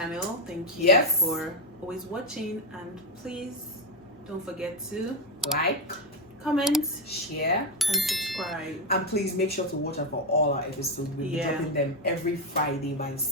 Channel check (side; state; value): both; normal; correlation 0.07